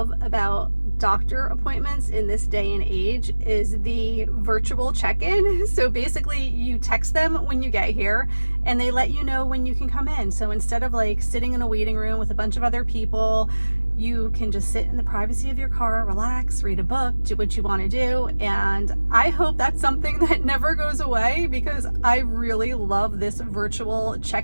about doctor appointments in this day and age is the virtual check-in. So basically you text them when you get here and they let you know when you can come in. So instead of like sitting in a waiting room with a bunch of other people, you can just sit in the privacy of your car, relax, read a book, do what you want to do. And I hope that's something that never goes away, because I really love this virtual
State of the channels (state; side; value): inverted; both; correlation -1.00